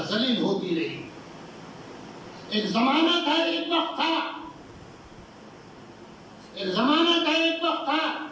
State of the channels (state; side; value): identical; both; correlation 1.00